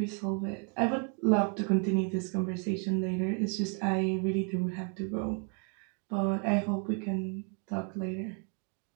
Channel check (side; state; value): left; quieter; 39.6 dB